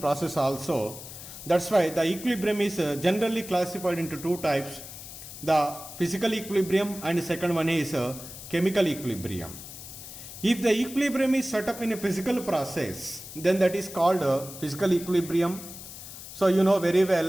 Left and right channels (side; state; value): left; noise; hiss, 13 dB below the sound